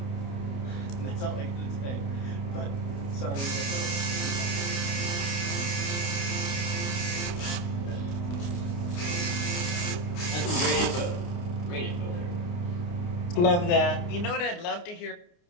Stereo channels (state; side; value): late; right; 29 ms